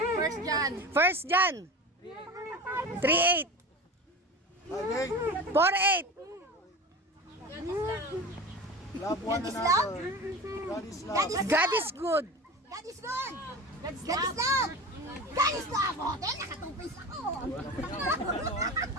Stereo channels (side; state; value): both; normal; correlation 0.31